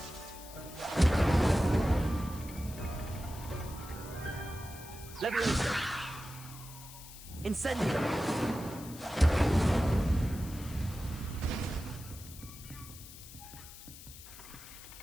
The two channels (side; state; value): left; noise; hiss, 16 dB below the sound